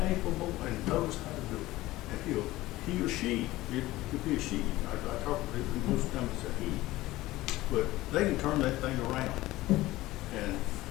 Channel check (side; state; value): right; quieter; 17.6 dB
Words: and knows how to do it. And he or she, it could be a she. I talk to people, most times it's a he. But they can turn that thing around. And